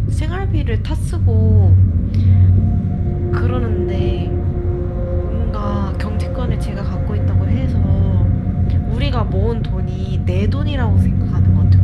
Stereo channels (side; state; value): both; identical; correlation 1.00